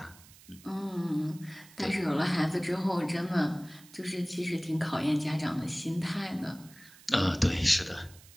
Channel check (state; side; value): noise; right; hiss, 22 dB below the sound